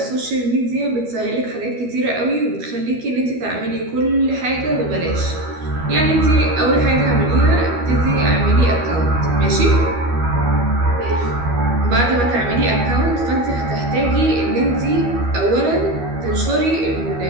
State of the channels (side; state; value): left; late; 12 ms